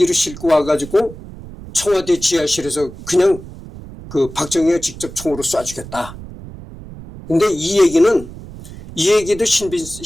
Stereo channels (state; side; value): noise; right; rumble, 15 dB below the sound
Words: 싣고 와가지고 청와대 지하실에서 그냥 박정희가 직접 총으로 쏴주겠다. 근데 이 얘기도